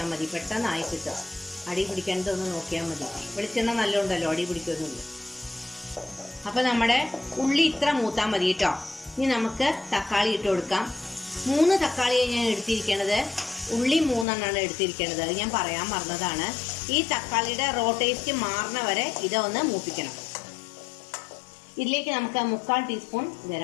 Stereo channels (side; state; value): right; drops out; at 14.2 s